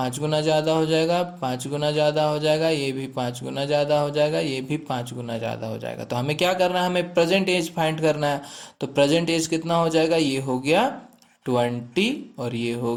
गुना ज़्यादा हो जाएगा, 5 गुना ज़्यादा हो जाएगा, ये भी 5 गुना ज़्यादा हो जाएगा, ये भी 5 गुना ज़्यादा हो जाएगा। तो हमें क्या करना है, हमें प्रेजेंट एज फाइंड करना है। तो प्रेजेंट एज कितना हो जाएगा, ये हो गया 20 और ये हो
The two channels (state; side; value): identical; both; correlation 1.00